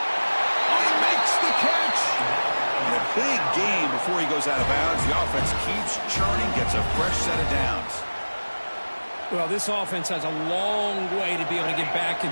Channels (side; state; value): both; inverted; correlation -1.00